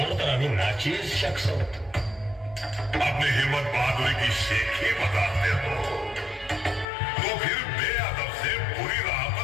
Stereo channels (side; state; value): right; drops out; at 6.9 s